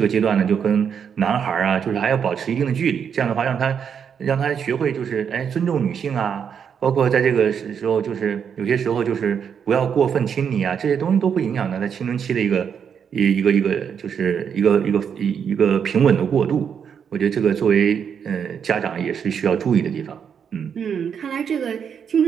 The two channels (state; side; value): quieter; left; 7.4 dB